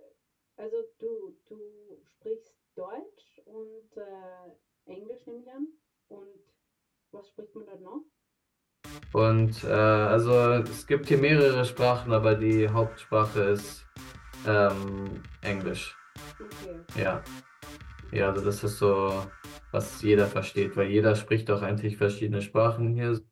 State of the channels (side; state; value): both; identical; correlation 1.00